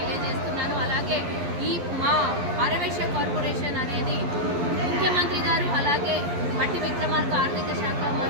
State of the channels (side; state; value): left; late; 11 ms